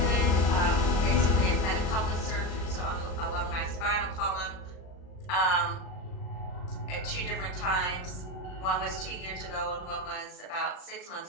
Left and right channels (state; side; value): late; right; 38 ms